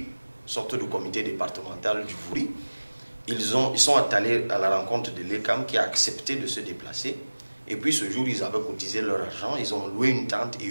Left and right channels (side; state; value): both; inverted; correlation -1.00